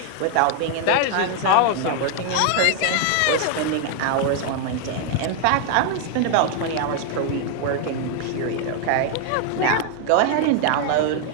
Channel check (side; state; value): both; different; correlation 0.00